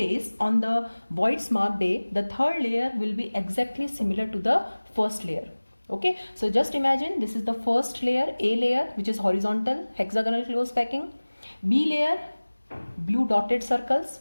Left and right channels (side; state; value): both; inverted; correlation -1.00